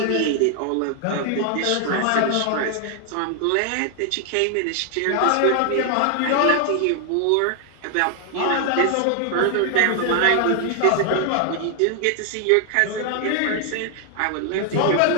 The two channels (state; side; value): different; both; correlation 0.00